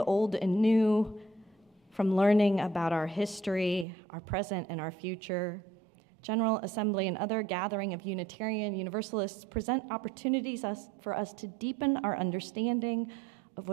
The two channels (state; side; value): drops out; left; at 3.9 s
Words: and new, from learning about our history, our present, and our future, General Assembly and other gathering of Unitarian Universalists present opportunities for us to deepen our understanding of